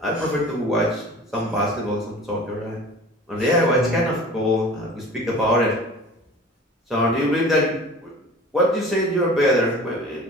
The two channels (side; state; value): both; normal; correlation 0.42